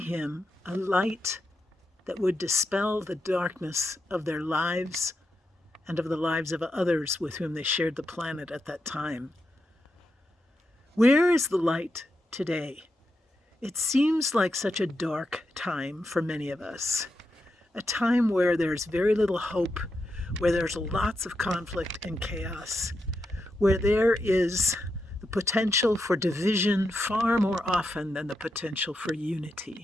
a light that would dispel the darkness of their lives and of the lives of others with whom they shared the planet at that time. Where is the light today? It seems like such a dark time for many of us. A time where there's very little hope, where there's lots of conflict and chaos, where there is the potential for division far more often than the potential for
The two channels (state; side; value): normal; both; correlation 0.85